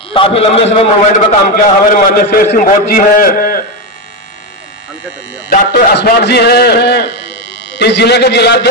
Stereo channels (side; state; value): both; normal; correlation 0.10